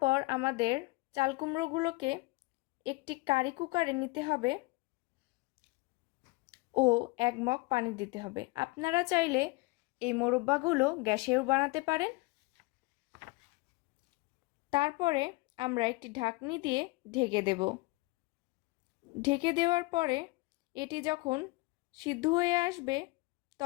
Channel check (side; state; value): right; quieter; 23.8 dB